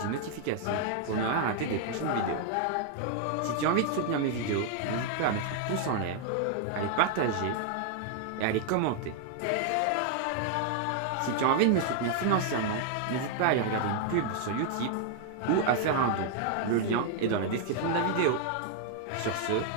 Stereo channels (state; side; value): different; both; correlation 0.00